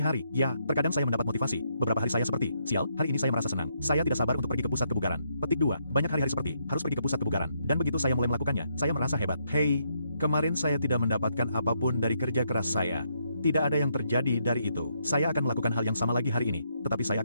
Ya, terkadang saya mendapat motivasi. Beberapa hari saya seperti, sial, hari ini saya merasa senang. Saya tidak sabar untuk pergi ke pusat kebugaran. Petik 2, banyak hari-hari seperti, harus pergi ke pusat kebugaran. Dan begitu saya mulai melakukannya, saya merasa hebat. Hei, kemarin saya tidak mendapatkan apapun dari kerja keras saya. Tidak ada yang terjadi dari itu. Saya akan melakukan hal yang sama lagi hari ini, tetapi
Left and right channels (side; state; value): both; inverted; correlation -0.75